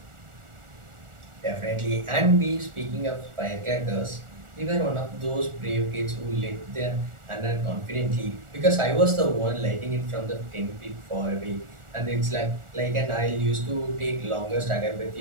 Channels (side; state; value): left; late; 1.4 ms